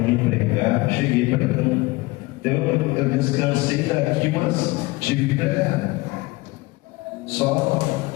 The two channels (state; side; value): quieter; right; 22.2 dB